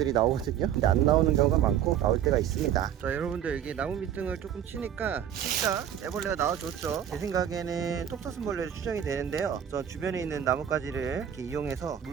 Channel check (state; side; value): quieter; left; 9.6 dB